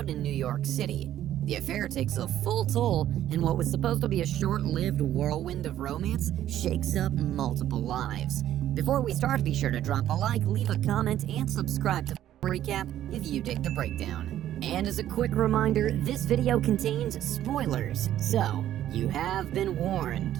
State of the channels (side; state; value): left; quieter; 12.1 dB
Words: in New York City. The affair takes a full toll, and what was supposed to be a short-lived whirlwind of romance shakes up multiple lives. Before we start, be sure to drop a like, leave a comment, and subscribe to Recap if you dig the breakdown. And as a quick reminder, this video contains spoilers, so you have been